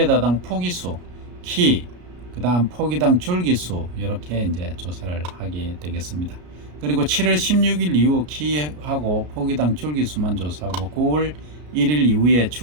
포기수, 키, 그 다음 포기당 줄기수 이렇게 이제 조사를 하게 되겠습니다. 그리고 7월 16일 이후 키하고 포기당 줄기수만 조사하고 9월 1일 이후에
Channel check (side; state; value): left; late; 33 ms